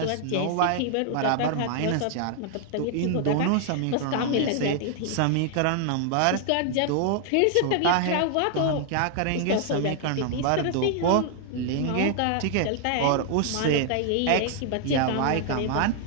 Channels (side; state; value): both; different; correlation 0.00